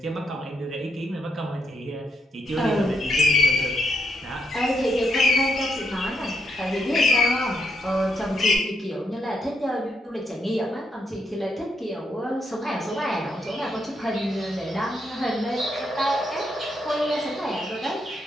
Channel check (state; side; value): normal; both; correlation 0.78